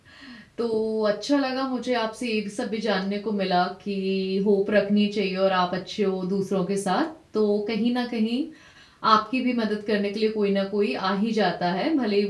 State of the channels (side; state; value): both; identical; correlation 1.00